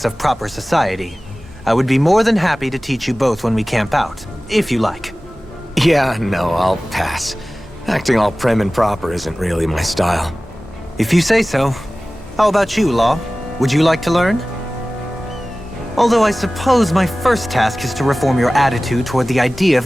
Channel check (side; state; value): both; normal; correlation 0.97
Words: of proper society. I would be more than happy to teach you both when we camp out, if you like. Yeah, no, I'll pass. Acting all prim and proper isn't really my style. If you say so. How about you, Law? Would you like to learn? Although I suppose my first task is to reform your attitude toward the idea